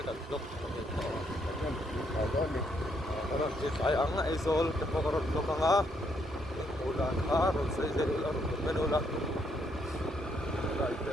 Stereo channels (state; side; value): normal; both; correlation 0.73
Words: cái lúc orang si sayang izol kepokorot lo kanga ulan arun saya ulan menulan